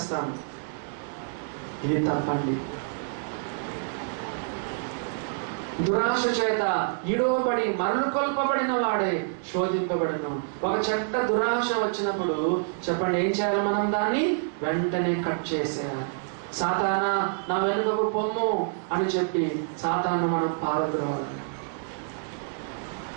ఇది తప్పండి. దురాశ చేత ఈడవబడి మరలు కొల్పబడిన వాడే శోధింపబడను. ఒక చెడ్డ దురాశ వచ్చినప్పుడు చెప్పండి, ఏం చేయాలి? మనం దాన్ని వెంటనే కట్ చేసేయాలి. సాతానా నా వెనుకకు పొమ్ము అని చెప్పి సాతాను మనం పారద్రోవాలి.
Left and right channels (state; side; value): silent; left; digital silence